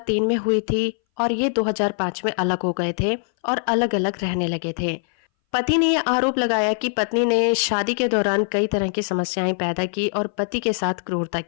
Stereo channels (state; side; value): silent; right; 61 dB below the other